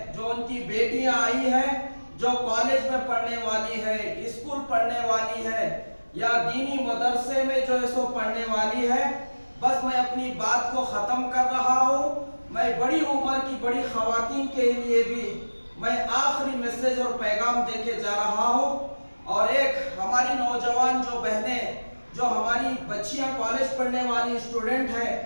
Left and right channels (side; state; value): both; inverted; correlation -1.00